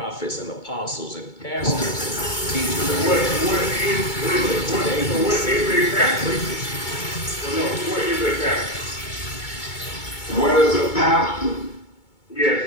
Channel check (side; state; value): right; late; 2.2 ms